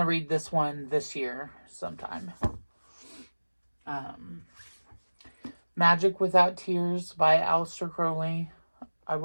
read this one this year sometime. Magic Without Tears by Aleister Crowley. I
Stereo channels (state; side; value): inverted; both; correlation -1.00